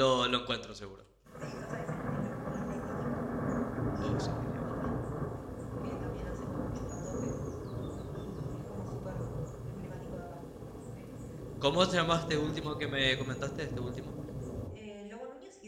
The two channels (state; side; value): identical; both; correlation 1.00